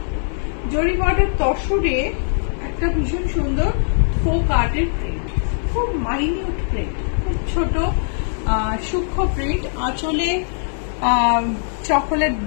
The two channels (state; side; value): silent; right; 60 dB below the other